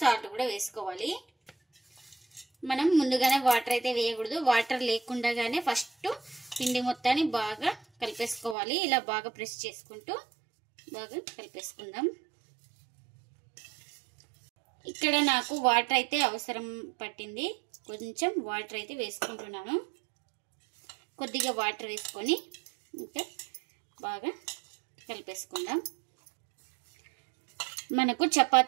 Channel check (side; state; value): left; drops out; at 8.6 s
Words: కూడా వేసుకోవాలి. మనం ముందుగానే వాటర్ అయితే వేయకూడదు, వాటర్ లేకుండానే ఫస్ట్ పిండి మొత్తాన్ని బాగా కలిపేసుకోవాలి. ఇలా బాగా ప్రెస్ చేసుకుంటూ బాగా కలిపేసుకుందాం. ఇక్కడ నాకు వాటర్ అయితే అవసరం పట్టింది, కొంచెం వాటర్ అయితే వేసుకుంటున్నాను. కొద్దిగా వాటర్ వేసుకొని ఇంకా బాగా కలిపేసుకుందాం. మనకు